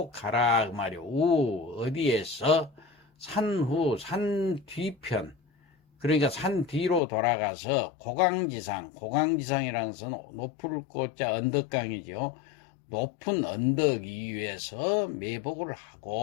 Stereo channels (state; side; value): drops out; right; at 7.0 s